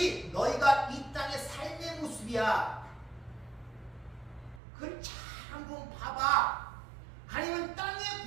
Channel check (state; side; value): drops out; left; at 4.6 s